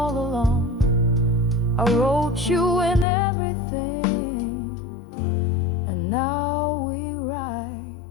along. I wrote you in everything, and now we write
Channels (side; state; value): right; drops out; at 3.1 s